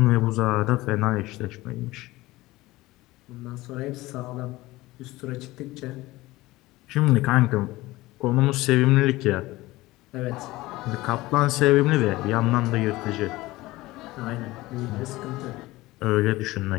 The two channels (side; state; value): right; quieter; 19.0 dB